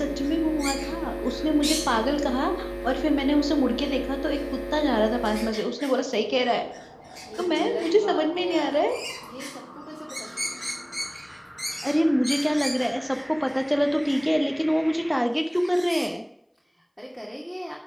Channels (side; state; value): both; identical; correlation 1.00